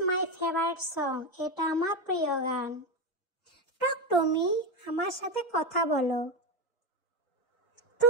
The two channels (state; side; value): normal; both; correlation 0.12